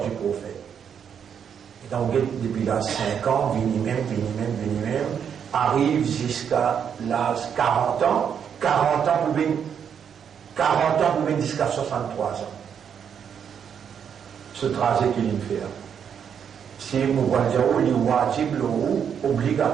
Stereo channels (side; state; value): left; quieter; 7.8 dB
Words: du prophète? Et donc, depuis là 5 ans, vini même, arrive jusqu'à l'âge 40 ans, 40 ans pour venir jusqu'à 63 ans. Ce trajet qu'il fait. Si nous voyons le wajib, le